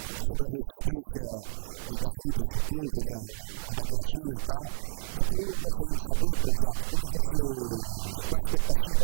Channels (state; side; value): silent; left; digital silence